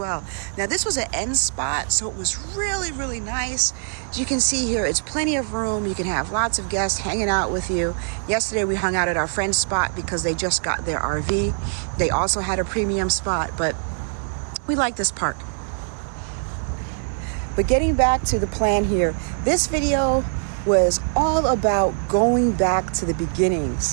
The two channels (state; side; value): silent; left; 61 dB below the other